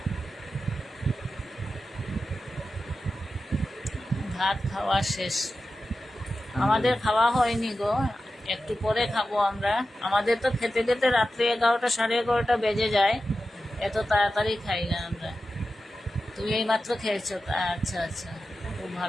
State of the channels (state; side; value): normal; both; correlation 0.92